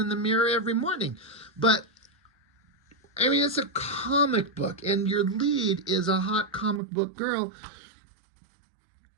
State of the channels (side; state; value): left; drops out; at 6.8 s